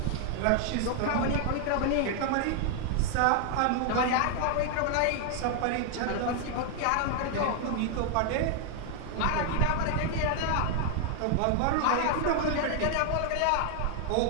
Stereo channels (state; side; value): different; both; correlation 0.00